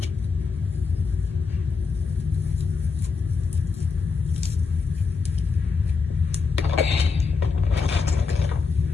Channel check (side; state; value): right; quieter; 4.9 dB